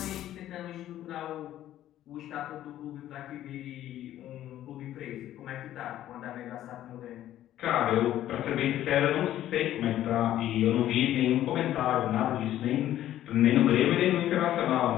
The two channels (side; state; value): right; quieter; 12.7 dB